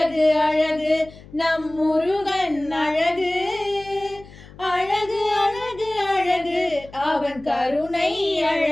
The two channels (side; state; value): left; noise; hum, 20 dB below the sound